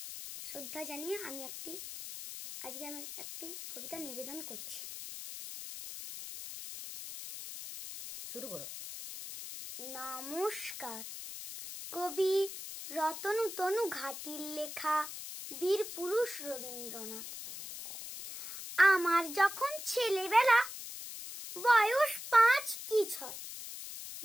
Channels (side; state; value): left; noise; hiss, 9 dB below the sound